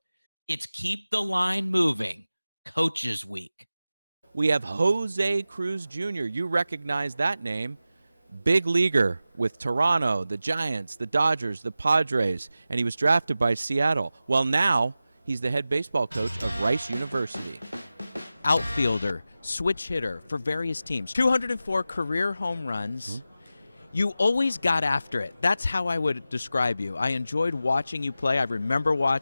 It's Keep the Line Moving Coaches Week. We have José Cruz Jr. You recognize that name. Big leaguer with Toronto, the Giants, the Dodgers, the Padres, and he was drafted by Seattle. Well, now he's the head baseball coach of Rice University. Outfielder, switch hitter for various teams. 204 career home runs. Mm-hmm. You always got after it. That's how I would describe you. I enjoyed watching you play. I remember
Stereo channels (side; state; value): both; inverted; correlation -0.94